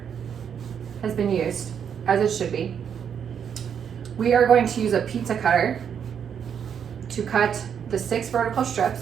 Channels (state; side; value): quieter; left; 7.9 dB